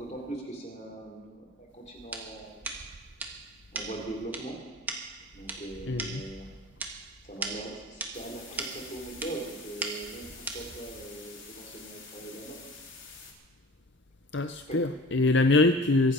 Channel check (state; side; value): normal; both; correlation 0.40